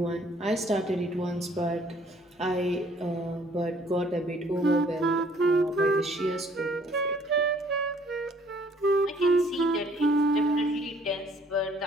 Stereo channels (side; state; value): both; normal; correlation 0.60